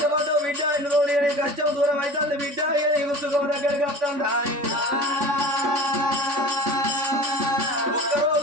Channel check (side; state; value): left; late; 3.5 ms